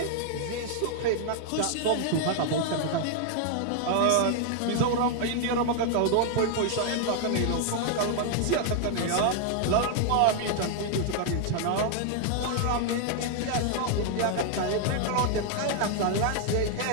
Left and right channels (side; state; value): both; different; correlation 0.00